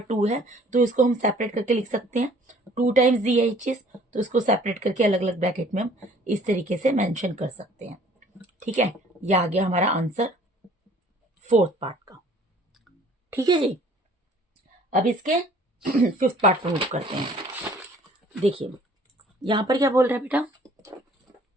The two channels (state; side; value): normal; both; correlation 0.55